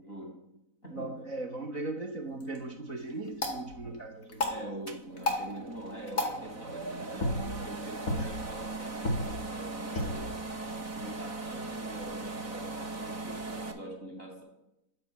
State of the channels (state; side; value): late; right; 4.0 ms